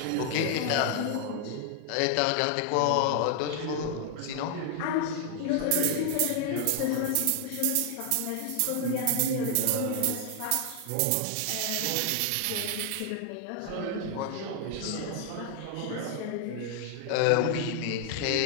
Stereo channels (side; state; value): both; different; correlation 0.00